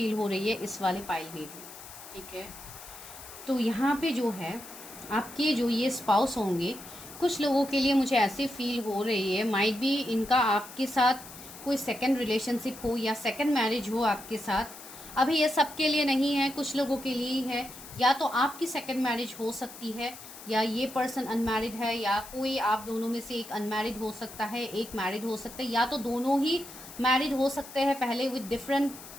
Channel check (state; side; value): noise; left; hiss, 15 dB below the sound